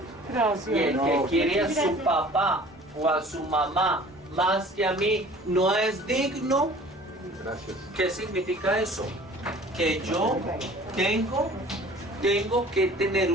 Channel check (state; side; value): normal; both; correlation 0.48